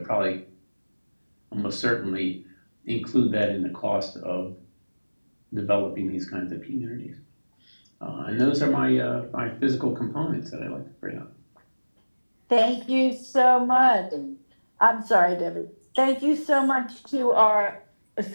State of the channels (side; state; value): both; inverted; correlation -1.00